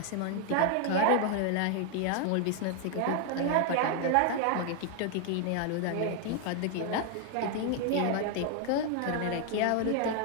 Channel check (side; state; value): both; different; correlation 0.00